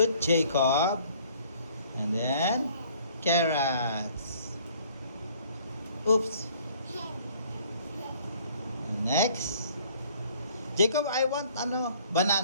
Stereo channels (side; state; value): both; inverted; correlation -0.58